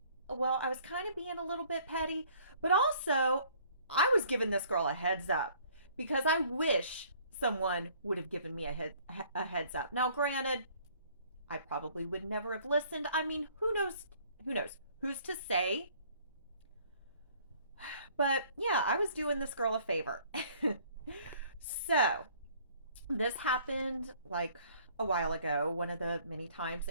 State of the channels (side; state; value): both; inverted; correlation -0.58